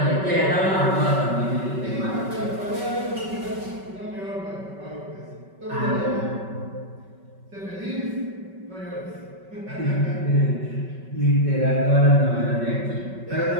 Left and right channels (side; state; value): left; late; 5.2 ms